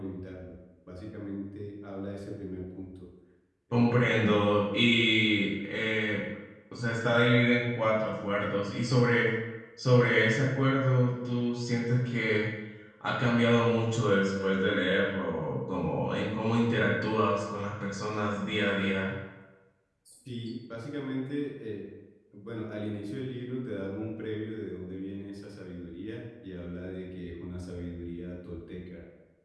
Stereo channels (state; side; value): identical; both; correlation 1.00